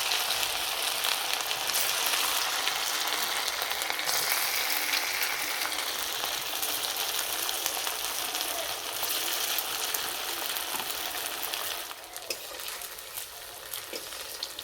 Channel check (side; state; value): both; identical; correlation 1.00